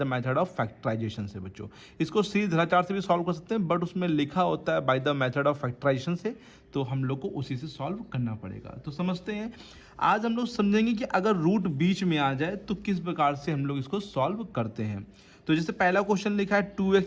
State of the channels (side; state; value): both; identical; correlation 1.00